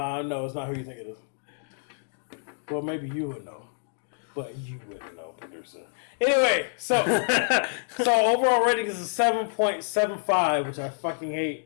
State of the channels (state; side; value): silent; right; digital silence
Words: it's not who you think it is. Well, maybe you would know, but you wouldn't know, producer. Anyway, so overall rating is a 7.75, which I fucking